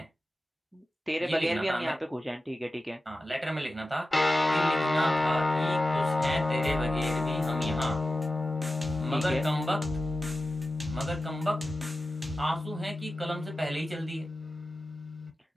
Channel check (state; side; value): normal; both; correlation 0.93